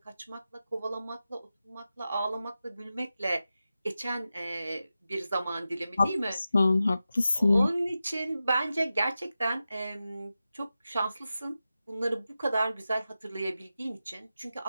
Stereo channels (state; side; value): inverted; both; correlation -0.92